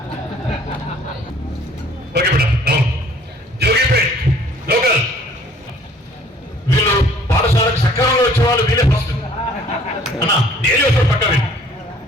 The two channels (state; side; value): normal; both; correlation 0.56